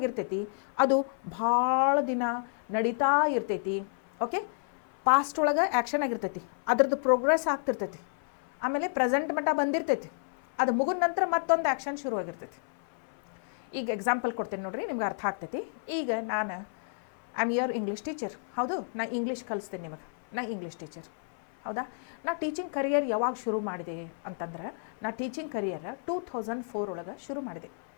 ಅದು ಭಾಳ ದಿನ ನಡೀತಾ ಇರ್ತೈತಿ. ಓಕೆ, ಪಾಸ್ಟ್ ಒಳಗೆ ಆ್ಯಕ್ಷನ್ ಆಗಿರ್ತೈತಿ, ಅದ್ರದ್ದು ಪ್ರೋಗ್ರೆಸ್ ಆಗ್ತಿರ್ತೈತಿ, ಆಮೇಲೆ ಪ್ರೆಸೆಂಟ್ ಮಟ್ಟ ಬಂದಿರ್ತೈತಿ, ಅದು ಮುಗಿದ ನಂತರ ಮತ್ತೊಂದು ಆ್ಯಕ್ಷನ್ ಶುರುವಾಗಿರ್ತೈತಿ. ಈಗ ಎಕ್ಸಾಂಪಲ್ ಕೊಡ್ತೇನೆ ನೋಡ್ರಿ, ನಿಮ್ಗೆ ಅರ್ಥ ಆಗ್ತೈತಿ. ಈಗ ನಾನು I am your English teacher. ಹೌದು, ನಾ ಇಂಗ್ಲೀಷ್ ಕಲಿಸ್ತೇನೆ ನಿಮಗೆ, ನಾ ಇಂಗ್ಲೀಷ್ ಟೀಚರ್. ಹೌದಾ, ನಾ ಟೀಚಿಂಗ್ ಕರಿಯರ್ ಯಾವಾಗ ಶುರು ಮಾಡಿದೆ ಅಂತಂದ್ರೆ ನಾ ಟೀಚಿಂಗ್ ಕರಿಯರ್ 2004 ಒಳಗೆ ಶುರು ಮಾಡಿದೆ.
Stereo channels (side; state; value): right; silent; 57 dB below the other